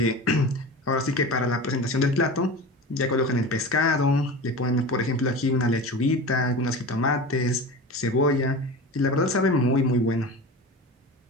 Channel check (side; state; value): both; normal; correlation 0.31